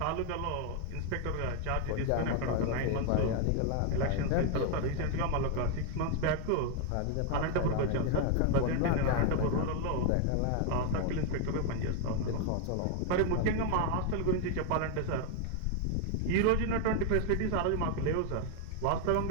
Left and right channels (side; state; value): both; different; correlation 0.01